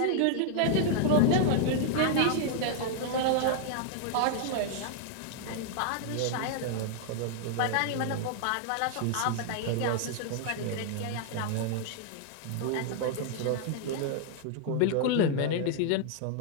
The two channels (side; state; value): both; different; correlation 0.00